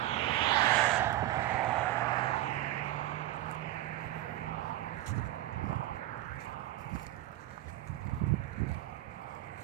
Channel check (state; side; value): quieter; left; 15.4 dB